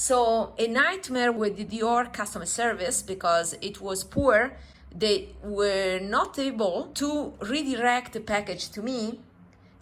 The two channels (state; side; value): identical; both; correlation 1.00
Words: a nightmare with the Dior customer service because it was poor. They were not able to redirect the package to me.